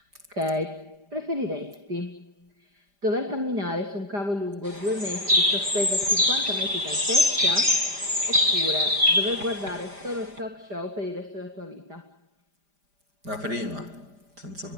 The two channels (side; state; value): left; late; 5.0 ms